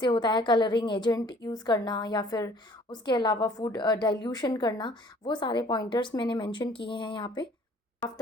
होता है, कलरिंग एजेंट यूज़ करना या फिर उसके अलावा फूड डाइल्यूशन करना, वो सारे पॉइंटर्स मैंने मेंशन किए हैं यहाँ पे।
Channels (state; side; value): normal; both; correlation 0.55